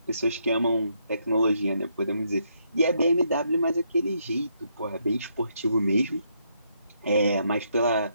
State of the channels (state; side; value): inverted; both; correlation -0.75